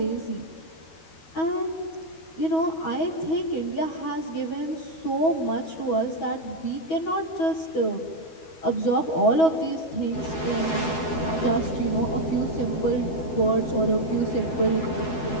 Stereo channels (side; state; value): right; late; 12 ms